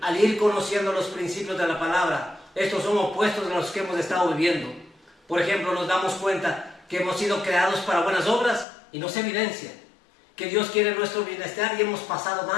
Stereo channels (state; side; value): drops out; right; at 8.7 s